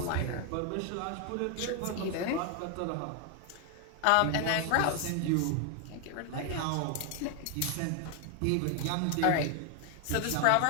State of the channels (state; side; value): different; both; correlation 0.01